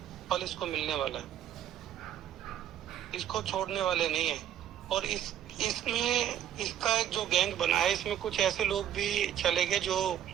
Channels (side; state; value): left; quieter; 10.6 dB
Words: फल इसको मिलने वाला है। इसको छोड़ने वाले नहीं है। और इसमें इसका एक जो गैंग बना है, इसमें कुछ ऐसे लोग भी चले गए जो